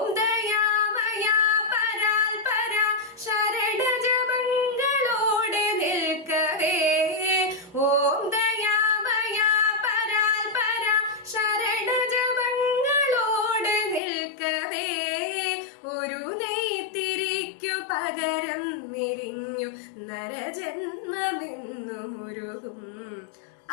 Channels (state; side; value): drops out; right; at 14.0 s